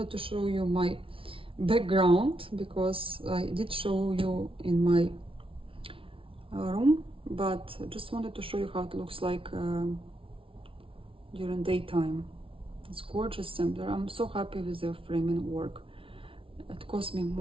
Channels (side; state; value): left; late; 0.26 ms